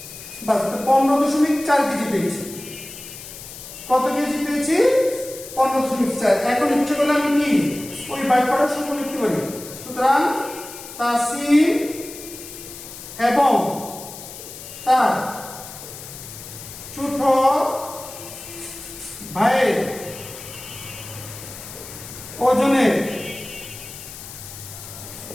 বাস 15.4 কেজি পেয়েছি। কত কেজি পেয়েছি? 15.4। এখন ইচ্ছে করলে আমি কি ওই বাক্যটার সূত্র লিখতে পারি। সুতরাং তাসিন এবং তার ছোট ভাইয়ের ওজনের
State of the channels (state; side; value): noise; left; hiss, 13 dB below the sound